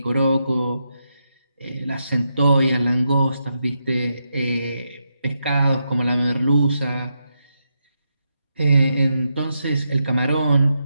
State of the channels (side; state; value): both; inverted; correlation -0.84